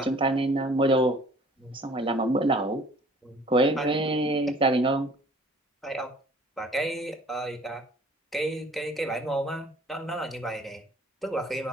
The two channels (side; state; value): both; normal; correlation 0.52